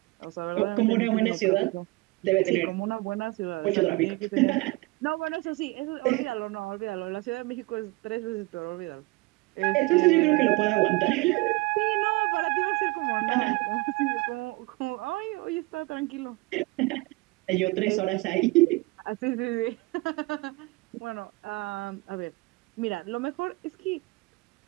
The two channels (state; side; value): quieter; left; 23.4 dB